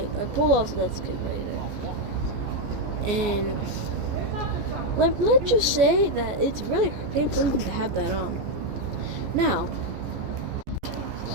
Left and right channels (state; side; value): late; left; 14 ms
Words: I pulled off that skid right there. And let's just say that it's really painful to have that on. Now.